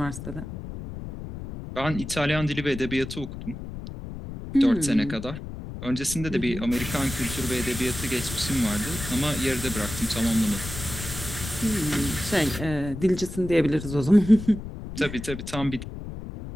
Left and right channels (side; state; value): left; noise; rumble, 9 dB below the sound